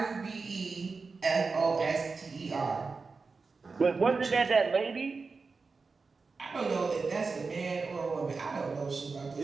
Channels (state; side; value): quieter; left; 4.4 dB